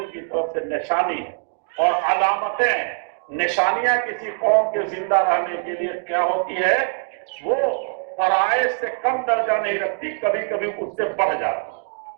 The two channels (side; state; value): left; silent; 60 dB below the other